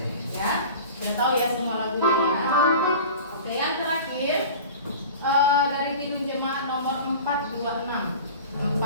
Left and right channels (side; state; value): both; inverted; correlation -0.38